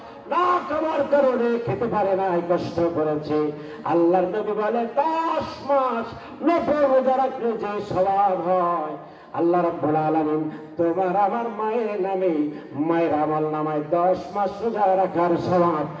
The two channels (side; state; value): both; identical; correlation 1.00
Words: না খাবার কারণে খেতে পারে না, কষ্ট করেছে। আল্লাহর নবী বলে, 10 মাস 90 রোজা রাখলে যে সওয়াব হয়, আল্লাহ রাব্বুল আলামিন তোমার আমার মায়ের নামে মায়ের আমল নামায় 10 মাস রোজা রাখার সওয়াব